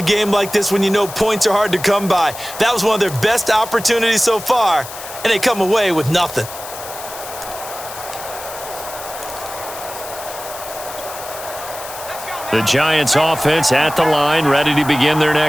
game like this when you know points are hard to come by. That was one of their best opportunities so far, and they come away with nothing. The Giants offense at the line, ready to begin their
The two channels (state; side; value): noise; left; hiss, 12 dB below the sound